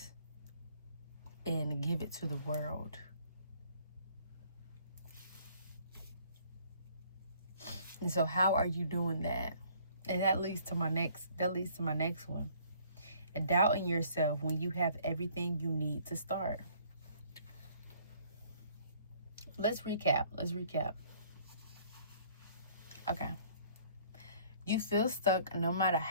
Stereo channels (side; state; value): both; inverted; correlation -0.58